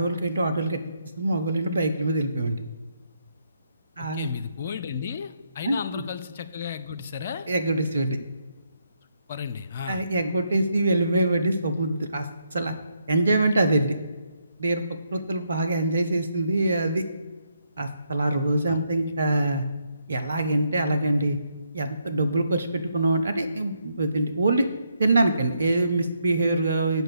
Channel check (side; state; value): both; inverted; correlation -0.77